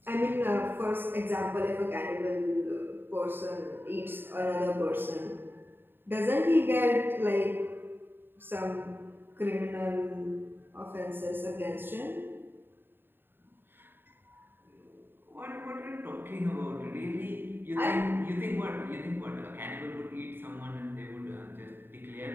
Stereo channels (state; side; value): late; left; 0.098 ms